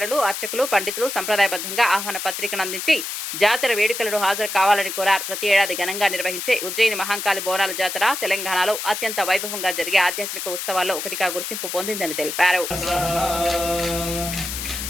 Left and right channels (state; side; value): noise; left; hiss, 5 dB below the sound